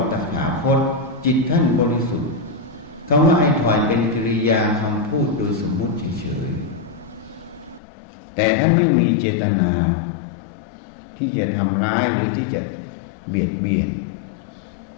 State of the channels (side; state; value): right; drops out; at 7.8 s